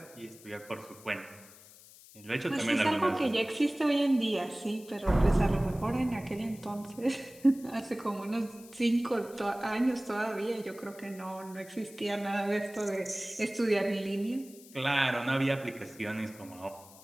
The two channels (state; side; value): noise; left; hiss, 21 dB below the sound